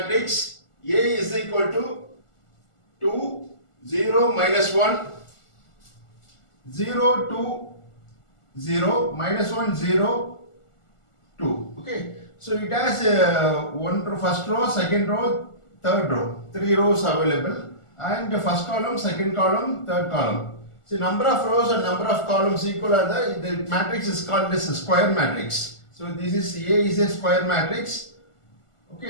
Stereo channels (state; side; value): late; right; 1.4 ms